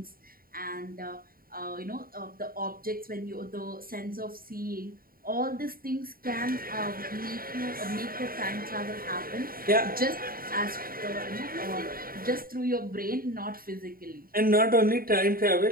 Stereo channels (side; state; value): left; late; 0.42 ms